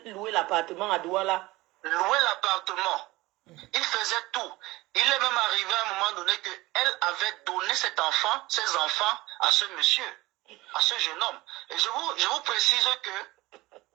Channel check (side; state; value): left; quieter; 20.0 dB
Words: louer l'appartement à Douala. Louer l'appartement. Il faisait tout. Il est même arrivé à un moment donné qu'elle avait donné ses enfants à ce monsieur, à ce jeune homme. Et je vous précise que